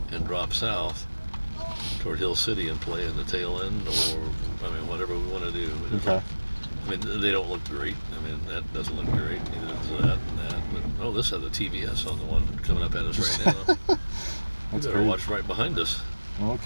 and drop south toward Hill City and play in the tail end, or I mean whatever we want to do. Okay. I mean they don't look great. I mean that doesn't look great. Neither does that and that. But oh, this has a TVS on the one coming up at us right now. We better great. watch right behind us. Well,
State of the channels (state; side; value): inverted; both; correlation -1.00